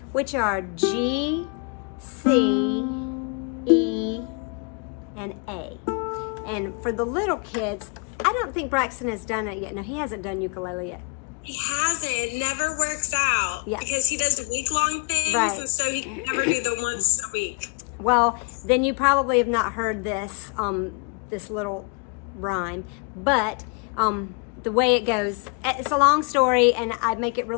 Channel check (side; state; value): right; quieter; 35.9 dB